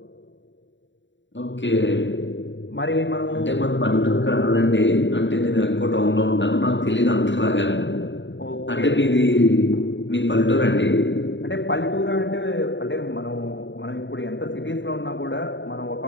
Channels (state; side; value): late; right; 0.54 ms